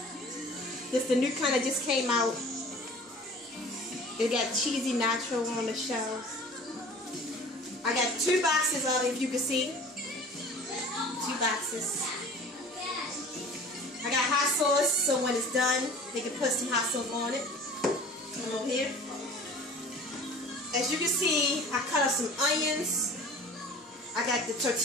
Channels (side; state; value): both; normal; correlation 0.44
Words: This is the new kind that just came out. It got cheesy nacho on the shells. I got 2 boxes of it, if you can see. 2 boxes. I got hot sauce, so when it's done, they can put some hot sauce on it. Come over here. As you can see, I cut up some onions. I got the